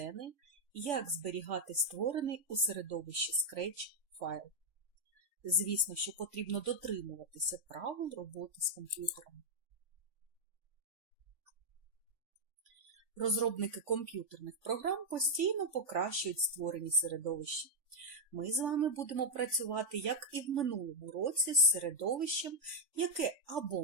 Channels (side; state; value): left; late; 3.5 ms